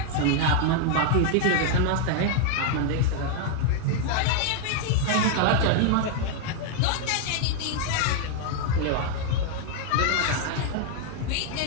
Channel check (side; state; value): both; different; correlation 0.00